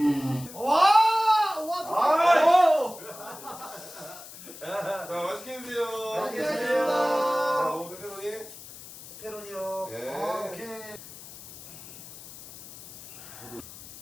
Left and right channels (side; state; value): left; noise; hiss, 16 dB below the sound